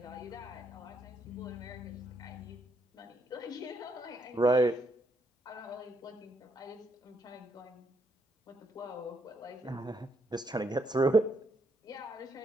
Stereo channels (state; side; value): normal; both; correlation 0.75